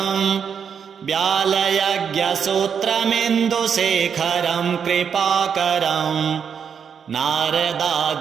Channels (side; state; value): left; quieter; 7.1 dB